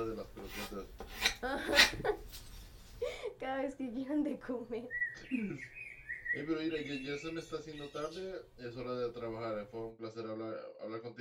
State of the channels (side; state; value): both; identical; correlation 1.00